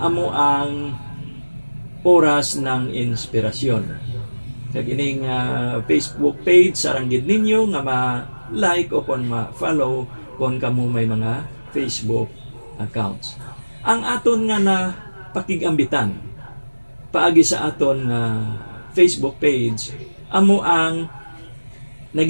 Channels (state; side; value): inverted; both; correlation -1.00